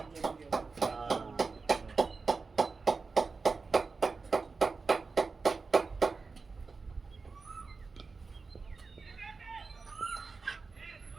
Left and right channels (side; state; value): left; quieter; 4.3 dB